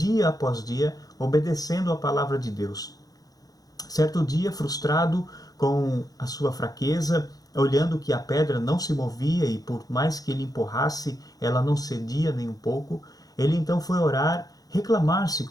após dia, obedecendo a palavra de Deus. Certo dia, frustrado com a sua fraqueza, olhando que a pedra não se movia e por mais que ele empurrasse, ela não cedia nem um pouco, ele então foi orar, reclamar-se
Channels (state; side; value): late; right; 0.18 ms